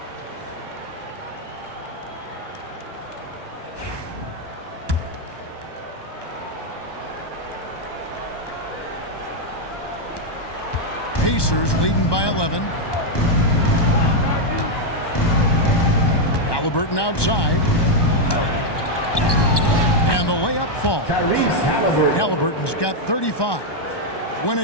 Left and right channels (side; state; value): right; late; 1.2 ms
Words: Pacers leading by 11. Halliburton outside. And the layup falls. Halliburton's got 35. When a